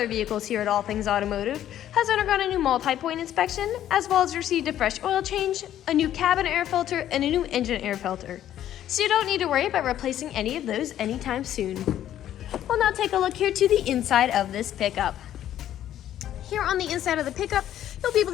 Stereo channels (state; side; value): quieter; right; 11.6 dB